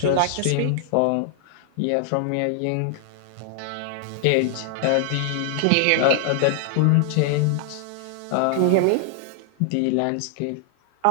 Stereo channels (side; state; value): both; different; correlation 0.00